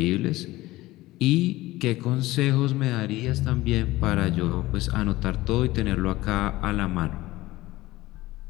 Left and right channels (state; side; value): quieter; right; 18.1 dB